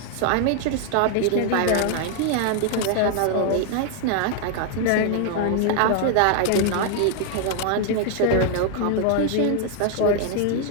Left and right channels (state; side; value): different; both; correlation 0.00